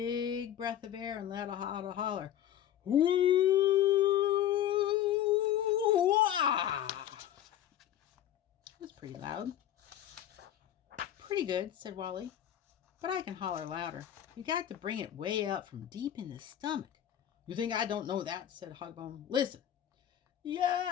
breath of air and let out a holler. Woo-wah! It was pretty loud. "Pretty good," said Wally, "but I can holler louder. You got to bring it way up from deep in the stomach." "You think I don't know that?" said Hogbone. "Listen.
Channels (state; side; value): quieter; right; 11.2 dB